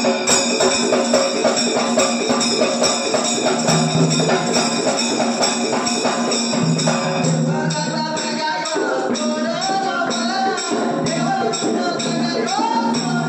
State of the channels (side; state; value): both; identical; correlation 1.00